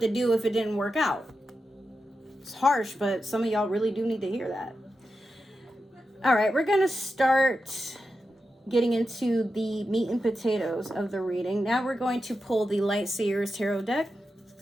to do if it didn't work out. It's harsh, but some of y'all really do need to hear that. All right, we're going to start getting into the meat and potatoes of the reading. Now we're going to pull the Light Seers Tarot deck.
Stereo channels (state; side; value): normal; both; correlation 0.89